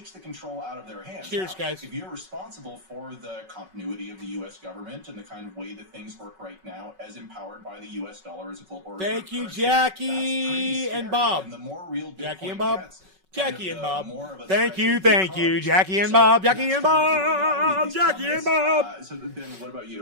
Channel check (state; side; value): late; left; 5.3 ms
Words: the contral out of their hands. Cheers, guys. If you're responsible for the continuity of the U.S. government and the kind of way that things work right now, as empowered by the U.S. dollar as a global reserve Thank you, currency, Jackie and Bob. And the more real Jackie Bitcoin and Bob. gets, Jackie and Bob. Thank you, Jackie and Bob. Jackie and Bob. Jackie and Bob. So Ben, what about